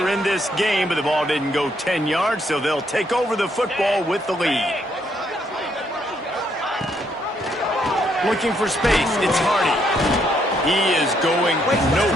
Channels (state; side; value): normal; both; correlation 0.73